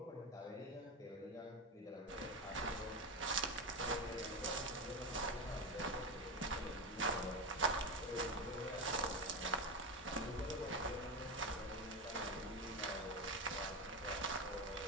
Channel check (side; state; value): both; normal; correlation 0.16